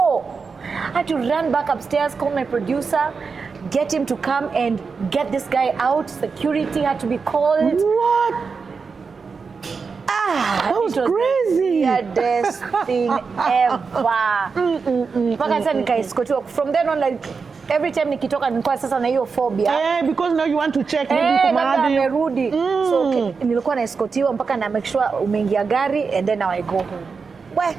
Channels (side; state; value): left; quieter; 5.1 dB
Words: I had to run back upstairs, call my producer, get him to come and get this guy out. Security had to be called. What? That was crazy. The weirdest thing ever. Mpaka sasa nikaescortiwa. From then on, like, every time nikitoka nilikuwa sasa na hiyo phobia. Because now you want to check maybe kama amerudi. So nilikuwa naescortiwa mpaka na make sure umeingia gari and then now I go home. Well,